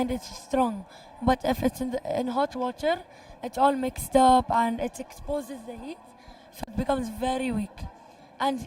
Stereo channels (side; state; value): both; identical; correlation 1.00